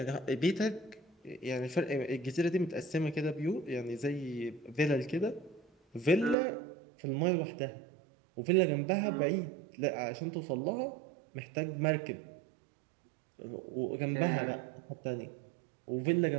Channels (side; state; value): left; drops out; at 6.4 s